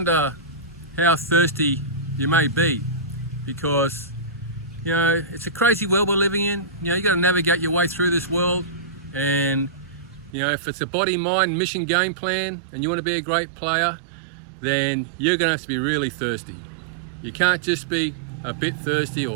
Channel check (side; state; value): left; drops out; at 10.4 s